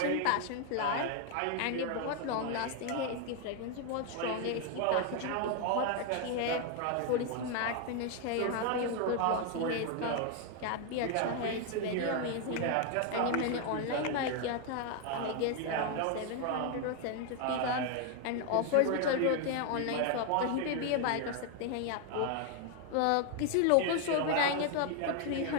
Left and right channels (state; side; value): different; both; correlation 0.01